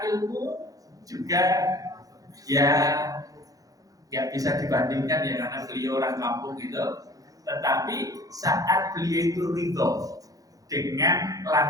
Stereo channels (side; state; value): left; late; 0.17 ms